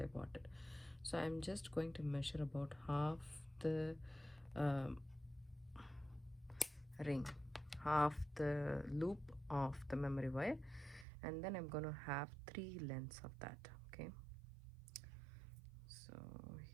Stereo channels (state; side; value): drops out; left; at 11.1 s